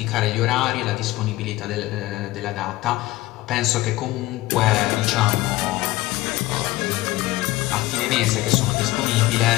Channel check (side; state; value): right; quieter; 17.9 dB